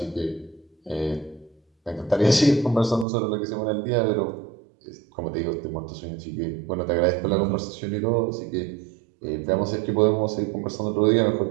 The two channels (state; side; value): drops out; left; at 3.1 s